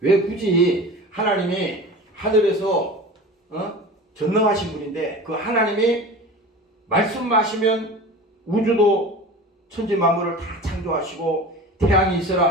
왜 굳이 하나님이 하늘에서 전능하신 분인데 그 하나님이 말씀하시면 우주도 천지 만물을 다 창조하시고 태양이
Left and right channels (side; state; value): both; normal; correlation 0.35